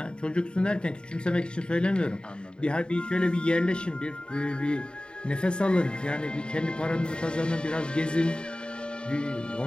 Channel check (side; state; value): right; late; 0.051 ms